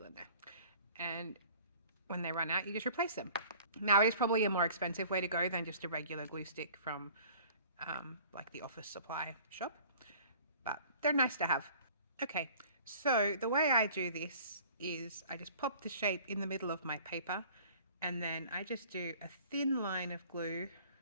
in there, and when they run out, you just replace them. Now, it is probably a more expensive way to go than just a regular glue stick from like the office supply shop, but they're nice to have. Okay, so the way I do this is I just pop the shape in the middle of my paper, and then I just do a thin line of glue,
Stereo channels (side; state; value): both; inverted; correlation -0.49